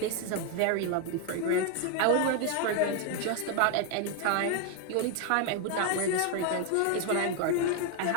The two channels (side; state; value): both; different; correlation 0.01